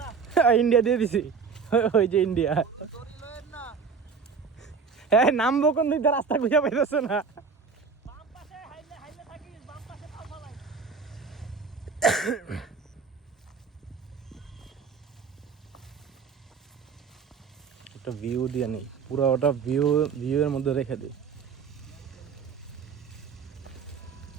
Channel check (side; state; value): left; quieter; 5.6 dB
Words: যা ইন্ডিয়া দিয়ে দিছি ওই যে ইন্ডিয়া তোরি লয়েন না হ্যাঁ নামবো কোন দিক দিয়ে রাস্তা খুঁজে পাইতেছে না বাম পাশে হাইলে থাকিস বাম পাশে পাও ফালাই একটা ভিউ দিয়ে নেই পুরো ওটা ভিউ এর মধ্যে রেখে দিই